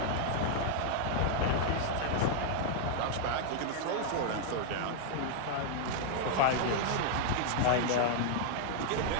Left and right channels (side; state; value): both; different; correlation -0.01